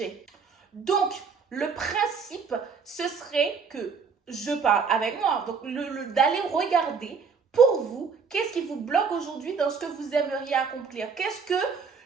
Donc, le principe, ce serait que je parle avec moi. Donc, d'aller regarder pour vous, qu'est-ce qui vous bloque aujourd'hui dans ce que vous aimeriez accomplir?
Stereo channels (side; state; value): left; quieter; 5.6 dB